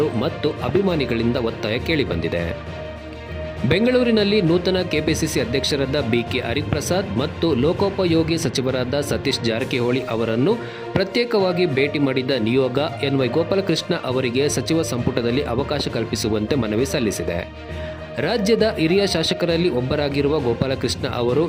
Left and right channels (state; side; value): identical; both; correlation 1.00